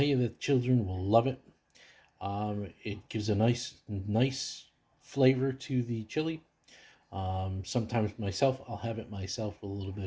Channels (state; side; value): identical; both; correlation 1.00